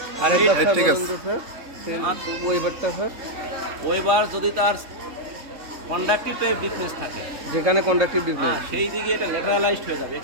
আরেকবার স্যার ঠিক বলুন আছে। তো স্যার, ওইবারটা স্যার। ওইবার যদি তার কন্ডাক্টিভ টাইপ ডিফারেন্স থাকে, যেখানে কন্ডাক্টিভ ডিফারেন্স, সেই দিকে এটা ল্যাটারালাইজড হয়ে যাবে।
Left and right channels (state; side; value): late; left; 3.5 ms